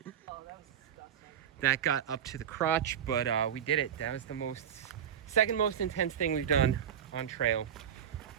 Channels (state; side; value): quieter; left; 9.0 dB